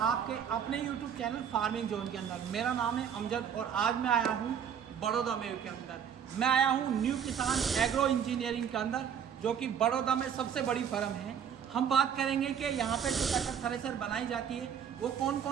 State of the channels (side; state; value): left; quieter; 8.1 dB